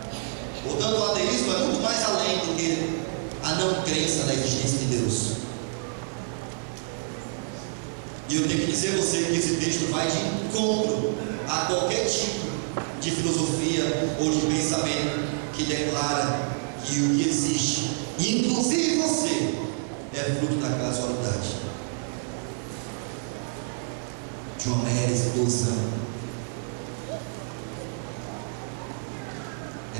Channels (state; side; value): silent; left; digital silence